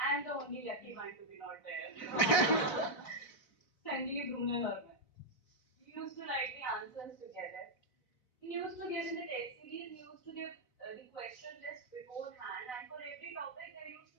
the only lucky one to be not there. Sanjeev, Brunel, or me. We used to write the answers together. He used to give in the test series, he used to give the question list beforehand, and for every topic, there used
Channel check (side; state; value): right; late; 4.0 ms